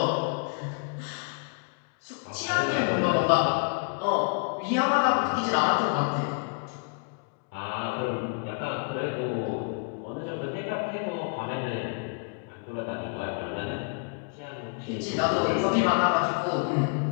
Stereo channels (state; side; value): quieter; right; 39.1 dB